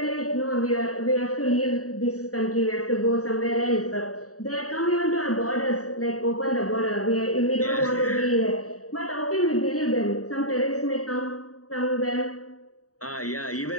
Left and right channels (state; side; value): late; right; 0.66 ms